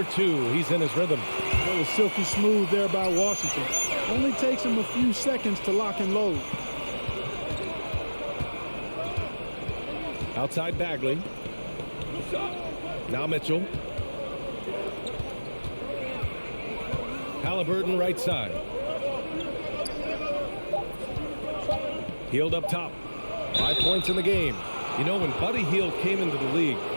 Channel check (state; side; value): inverted; both; correlation -1.00